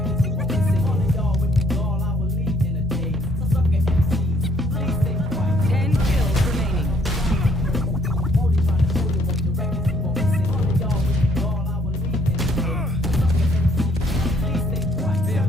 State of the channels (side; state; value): both; normal; correlation 0.66